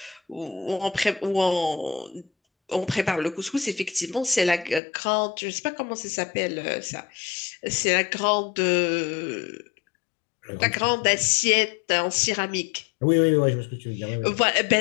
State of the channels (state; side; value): drops out; right; at 4.8 s